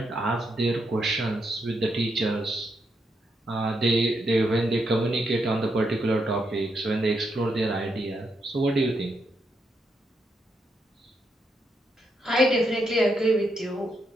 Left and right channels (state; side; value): normal; both; correlation 0.81